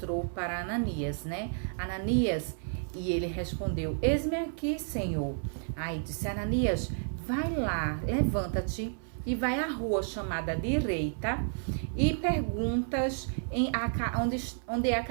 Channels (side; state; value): left; silent; 56 dB below the other